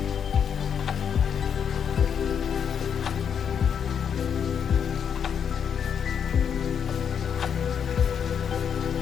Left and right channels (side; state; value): right; quieter; 7.7 dB